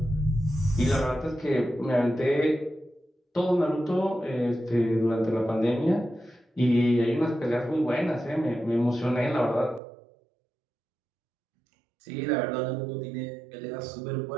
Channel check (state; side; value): drops out; left; at 9.8 s